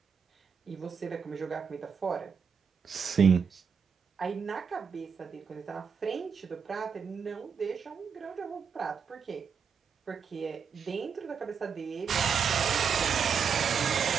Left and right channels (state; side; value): quieter; left; 6.5 dB